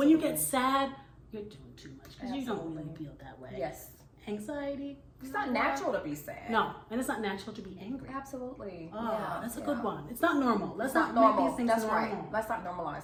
you get sad, you're doing too much because you don't really feel that way. Yes. Anxiety. It's not natural to be sad. No, and it's not natural to be angry. Absolutely. Oh, yeah, that's a good one. It's not normal. Let's not normal. make these things That's normal. right. Let's not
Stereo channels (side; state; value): both; identical; correlation 1.00